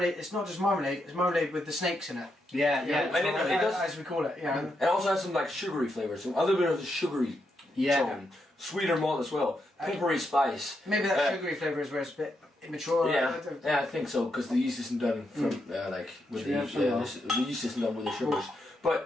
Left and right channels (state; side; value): normal; both; correlation 0.82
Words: It's not just marmalade. It's marmalade with the snakes in it. Yeah. And it does, as we call it. Yeah. It also has some like sugary flavours, some other bit of the sugary tone. Sweeter malt as well, peppery spice. Maybe that sugary flavour is where it's a bit immature. Yeah, I think so, because the yeast isn't done from the yeast isn't done with the sugars.